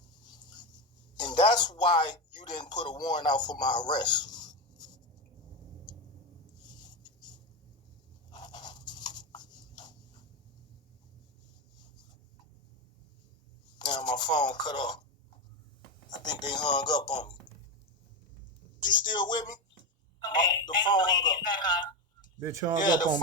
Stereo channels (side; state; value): both; normal; correlation 0.14